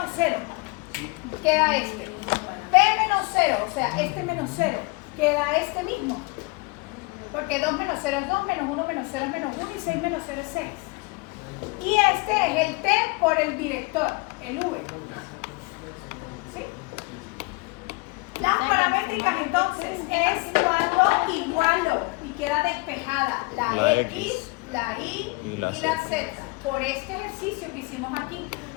0, queda este. P menos 0, o sea, este menos 0, queda este mismo. Porque 2 menos 0 es 2, menos 1 menos 0 es menos 1 y 6 menos 0 es 6. Y este es el T por el director, el V. ¿Sí? Las paramétricas entonces es cuando igualo y queda despejada la La X, X, la Y y la la Z. Z por este ejercicio que hicimos aquí.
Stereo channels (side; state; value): right; quieter; 27.0 dB